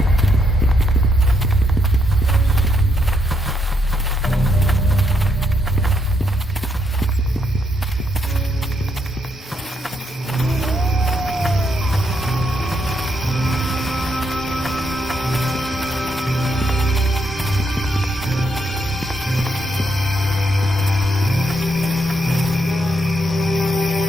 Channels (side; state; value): both; normal; correlation 0.77